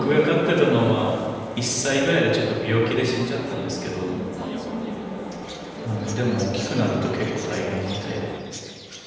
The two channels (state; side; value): identical; both; correlation 1.00